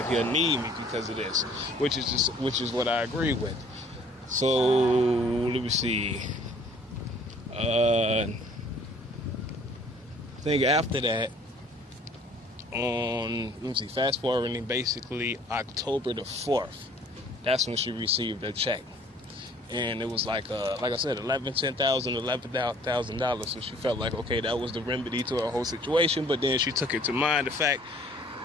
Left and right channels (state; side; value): normal; both; correlation 0.55